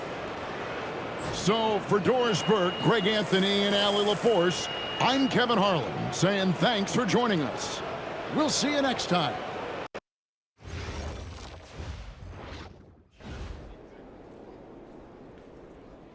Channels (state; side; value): identical; both; correlation 1.00